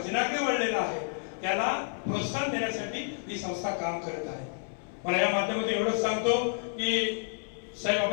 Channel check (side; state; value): right; silent; 58 dB below the other